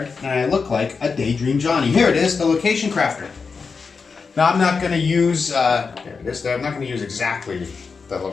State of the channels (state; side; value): quieter; right; 5.0 dB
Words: and I look like a Daydream Johnny. Here it is, the Location Crafter. Now I'm not going to use, there it is. I'm not going to use exactly the